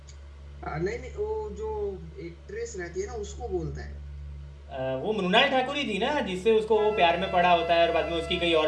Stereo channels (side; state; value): both; identical; correlation 1.00